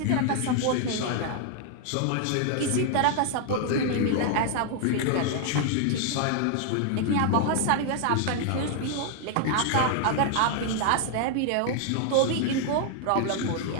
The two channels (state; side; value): different; both; correlation 0.00